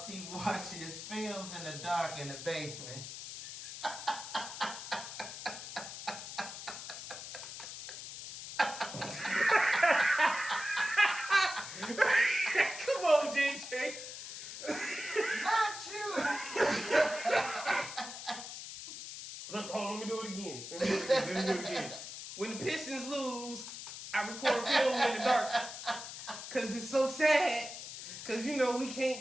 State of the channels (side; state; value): left; noise; hiss, 10 dB below the sound